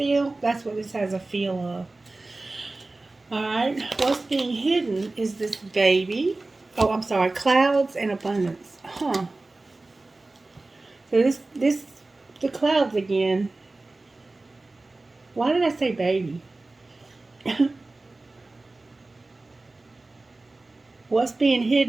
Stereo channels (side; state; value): left; quieter; 3.2 dB